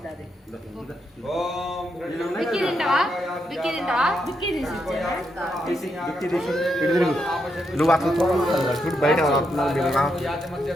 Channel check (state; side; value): normal; both; correlation 0.81